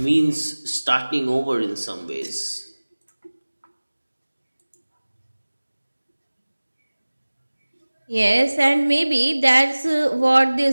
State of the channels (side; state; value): both; inverted; correlation -1.00